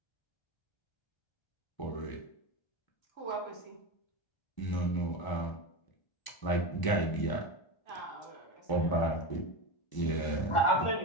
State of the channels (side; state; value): right; late; 1.0 ms